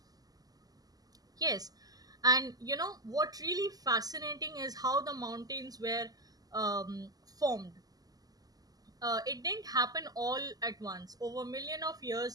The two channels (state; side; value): late; left; 0.18 ms